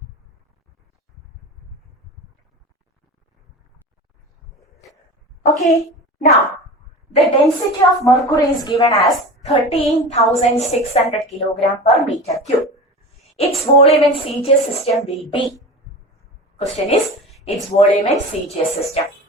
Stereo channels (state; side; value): normal; both; correlation 0.31